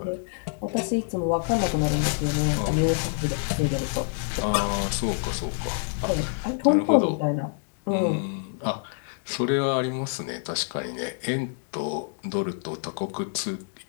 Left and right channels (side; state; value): right; silent; digital silence